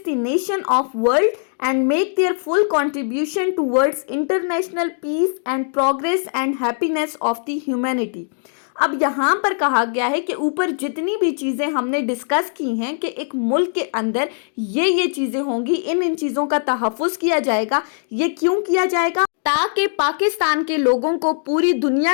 the nation of world and make their full contribution towards international peace and progress and happiness of the humanity. अब यहाँ पर कहा गया है कि ऊपर जितनी भी चीज़ें हमने डिस्कस की हैं कि एक मुल्क के अंदर ये चीज़ें होंगी, इन चीज़ों का तहफ़्फ़ुज़ किया जाएगा। ये क्यों किया जाएगा? ताकि पाकिस्तान के लोगों को पूरी दुनिया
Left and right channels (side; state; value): right; silent; digital silence